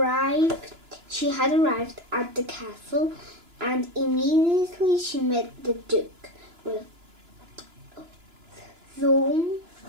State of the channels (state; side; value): late; left; 2.9 ms